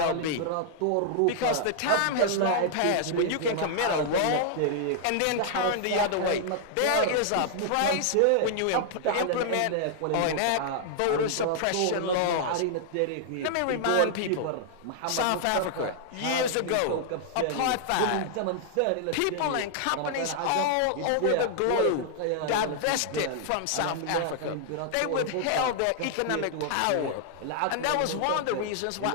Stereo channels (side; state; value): both; different; correlation -0.01